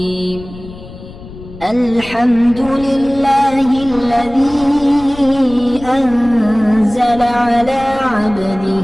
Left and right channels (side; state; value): left; noise; rumble, 16 dB below the sound